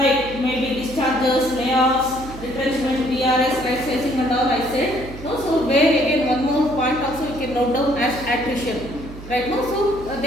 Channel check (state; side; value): noise; right; hum, 14 dB below the sound